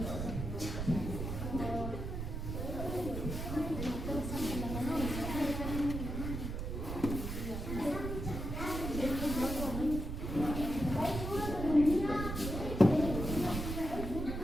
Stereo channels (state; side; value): noise; right; rumble, 4 dB below the sound